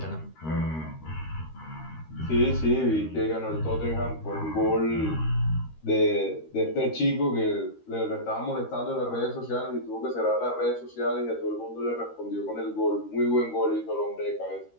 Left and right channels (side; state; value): right; late; 13 ms